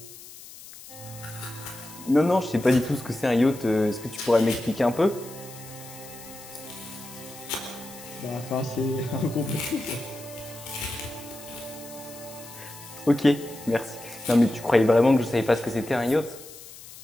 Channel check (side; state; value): left; noise; hiss, 17 dB below the sound